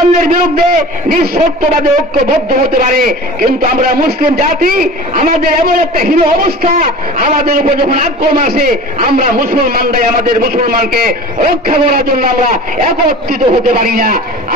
বিরুদ্ধে নিঃশর্তভাবে ঐক্যবদ্ধ হতে পারে, কিন্তু আমরা মুসলিম জাতি আমাদের এমন একটা হীন অবস্থা, আমাদের উপর যখন আক্রমণ আসে আমরা মুসলমানরাই আমাদের মুসলমানকে রক্ষা করার জন্য আমরা একত্রিত হতে পারি না।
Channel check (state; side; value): normal; both; correlation 0.38